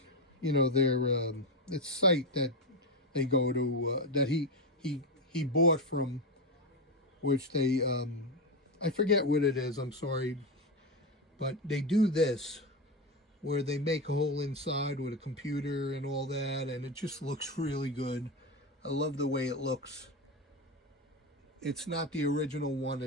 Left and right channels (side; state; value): both; normal; correlation 0.13